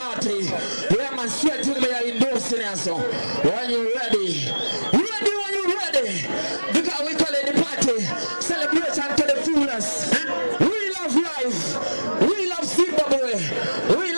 Yeah, man, straight to me endorsing us. When you're ready. Ready when you're ready. Because we call it the party. Celebration to the fullest. We love life. We love Zimbabwe. We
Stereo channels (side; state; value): both; inverted; correlation -1.00